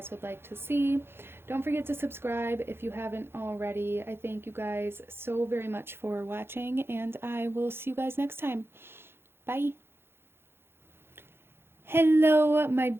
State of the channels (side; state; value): left; late; 0.11 ms